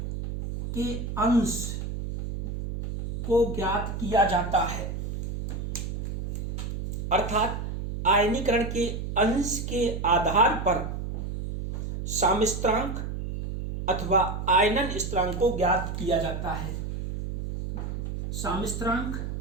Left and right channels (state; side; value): noise; right; hum, 5 dB below the sound